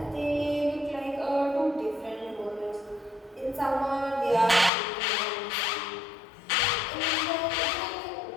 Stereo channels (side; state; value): right; drops out; at 4.7 s